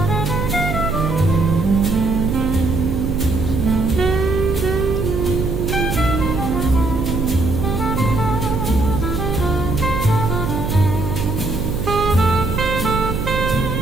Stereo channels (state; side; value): noise; right; hum, 3 dB below the sound